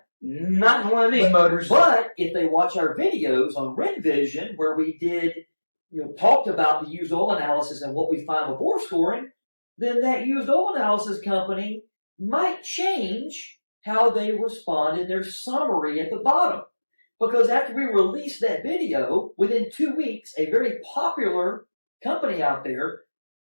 Not in one of these motors. But if they watch our videos on RenVision, where we did, talked about the used oil analysis and what we find with bore scoring, then that used oil analysis company might change how they respond in their summary at the bottom. Because after we released that video, within 2 weeks, a very popular company out there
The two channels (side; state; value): both; inverted; correlation -1.00